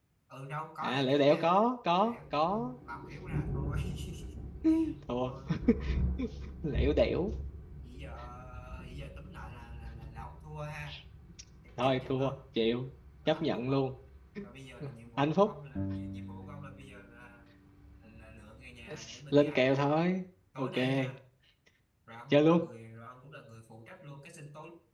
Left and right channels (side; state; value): both; identical; correlation 1.00